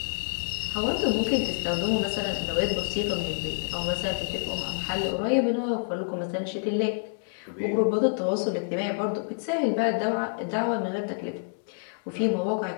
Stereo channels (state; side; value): silent; right; 59 dB below the other